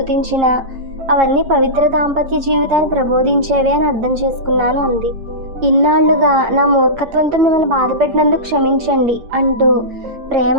అవన్నీ పవిత్ర దాంపత్య జీవితాన్ని ప్రబోధించేవే అని అర్థం చేసుకున్నాను అంది. ఇన్నాళ్లుగా నా మూర్ఖత్వంతో మిమ్మల్ని బాధ పెట్టినందుకు క్షమించండి అంటూ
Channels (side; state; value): left; late; 8.7 ms